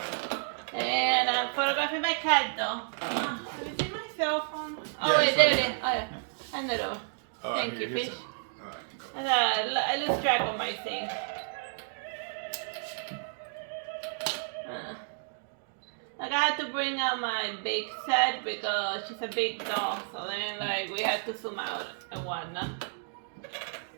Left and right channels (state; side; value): silent; left; digital silence